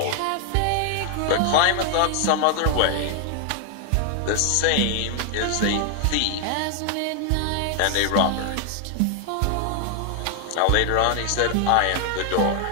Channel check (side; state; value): both; different; correlation 0.00